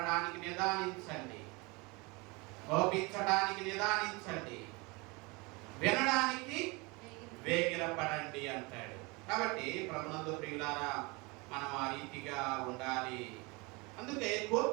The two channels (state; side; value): quieter; left; 26.7 dB